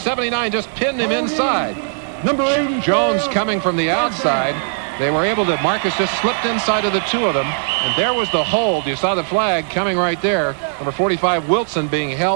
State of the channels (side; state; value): left; silent; digital silence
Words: just pinned him inside. Number 80. Jones coming from the outside. They were able to, Marcus just slipped inside of the two of them, and there was the hold. You saw the flag coming right there. Number 45, Wilson, being